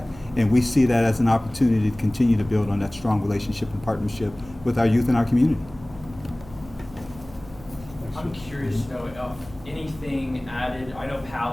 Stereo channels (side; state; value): right; noise; hum, 19 dB below the sound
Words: and we see that as an opportunity to continue to build on that strong relationship and partnership with our youth in our community. I'm curious to know if anything added, I know